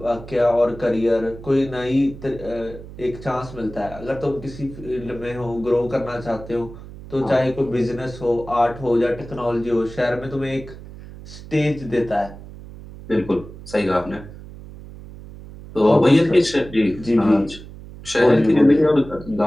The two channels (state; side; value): noise; right; hum, 15 dB below the sound